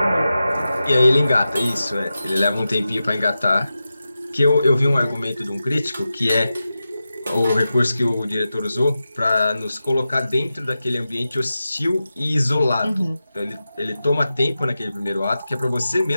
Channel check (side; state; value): both; inverted; correlation -0.92